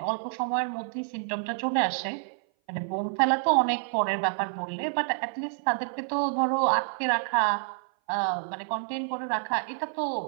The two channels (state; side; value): silent; left; 56 dB below the other